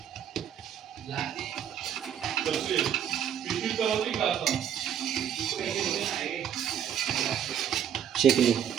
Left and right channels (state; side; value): quieter; left; 9.2 dB